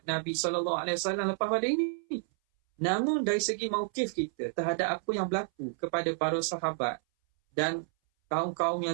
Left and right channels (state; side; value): silent; left; 58 dB below the other